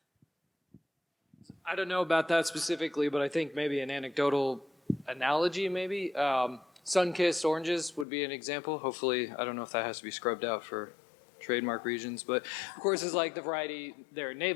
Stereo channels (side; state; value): right; drops out; at 8.1 s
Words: I don't know about that specifically, but I think maybe an anecdotal analogy, maybe. Sunkist Oranges would be an example. Hopefully, I don't know if that has to be scrubbed out for trademark regions, but of course it's like the variety, there are